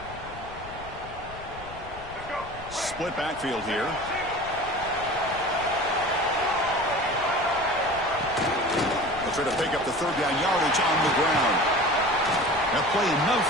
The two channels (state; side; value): noise; left; rumble, 16 dB below the sound